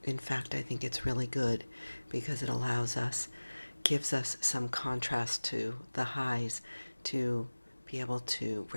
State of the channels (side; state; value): both; inverted; correlation -1.00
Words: In fact, I think it's really good because it gives us some contrast to the highs to be able to